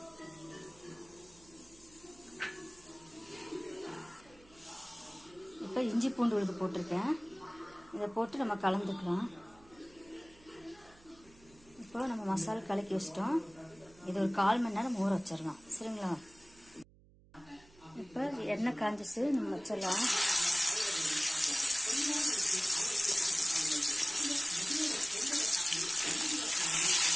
இப்போ இஞ்சி பூண்டு விழுது போட்டிருக்கேன், இதை போட்டு நம்ம கலந்துக்கலாம். இப்போ நம்ம மசாலா கலக்கி வச்சிட்டோம். இது ஒரு 1/4 மணி நேரம் ஊற வச்சிடலாம். சரிங்களா? இப்போ எண்ணெய் காஞ்சிச்சு, நம்ம வச்சிடலாம்.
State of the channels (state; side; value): noise; right; hum, 26 dB below the sound